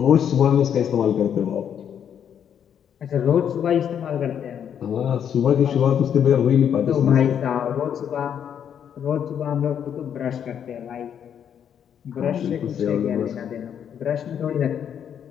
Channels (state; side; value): quieter; right; 8.7 dB